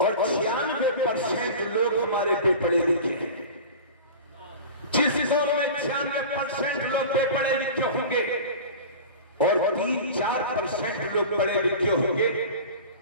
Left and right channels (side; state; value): both; inverted; correlation -0.35